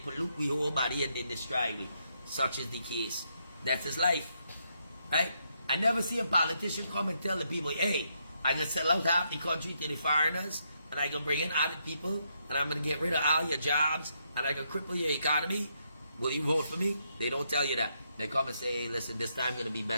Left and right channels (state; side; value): inverted; both; correlation -0.77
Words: we whole body and they destroy we. Such is the case. That's his life. Right? I never see a politician come and tell the people, hey, I'm going to sell out half the country to the foreigners, and I'm going to bring in other people, and I'm going to get rid of all your jobs, and I'm going to cripple your economy. Will you vote for me? They don't tell you that. They come and say, hey, listen, this time going to be